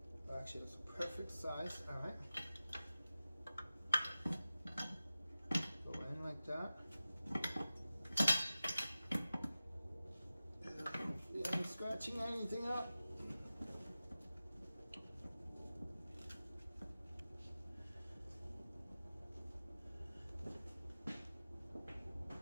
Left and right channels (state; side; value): inverted; both; correlation -0.95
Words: Actually, that's a perfect size. All right. Go in like that. Hopefully, I'm scratching anything up.